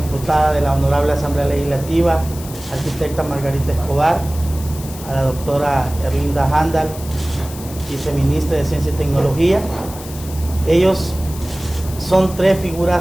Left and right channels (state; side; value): noise; left; hiss, 15 dB below the sound